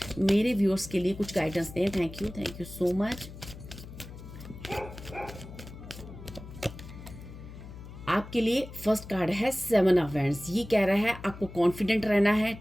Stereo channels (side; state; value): left; noise; hum, 14 dB below the sound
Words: मेरे व्यूअर्स के लिए कुछ गाइडेंस दें। Thank you so much. आपके लिए फर्स्ट कार्ड है 7 ऑफ वैंड्स। ये कह रहा है आपको कॉन्फिडेंट रहना है,